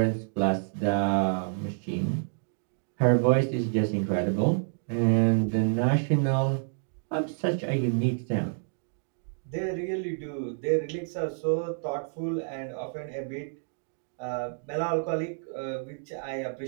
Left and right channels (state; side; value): silent; left; digital silence